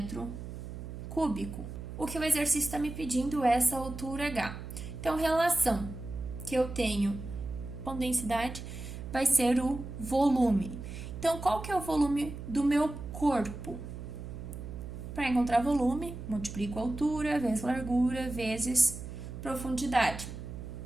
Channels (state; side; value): noise; right; hum, 9 dB below the sound